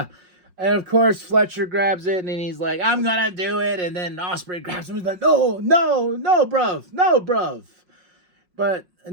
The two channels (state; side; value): late; left; 5.6 ms